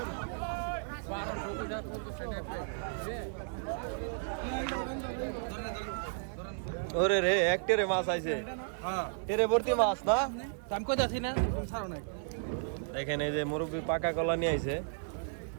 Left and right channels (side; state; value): left; silent; digital silence